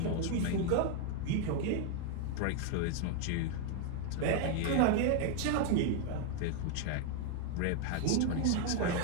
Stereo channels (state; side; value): different; both; correlation 0.00